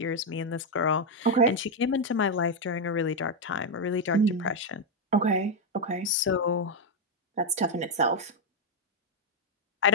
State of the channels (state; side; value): normal; both; correlation 0.01